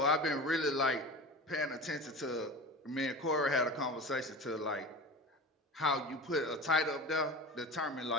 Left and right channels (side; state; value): both; normal; correlation 0.32